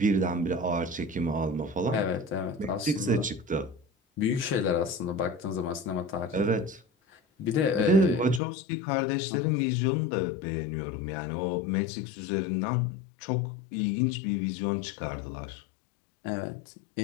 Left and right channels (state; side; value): drops out; right; at 8.4 s